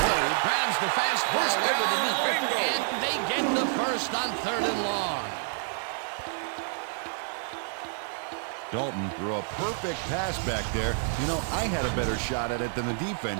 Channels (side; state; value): left; silent; 59 dB below the other